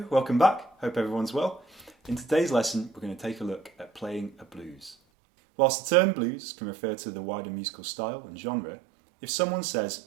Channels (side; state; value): left; drops out; at 5.0 s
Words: welcome back. Hope everyone's well. In today's lesson, we're going to take a look at playing a blues. Whilst the term blues can refer to the wider musical style and genre, if someone says